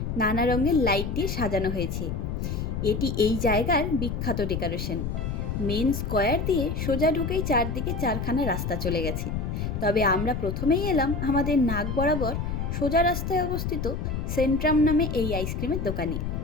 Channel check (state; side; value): noise; left; rumble, 3 dB below the sound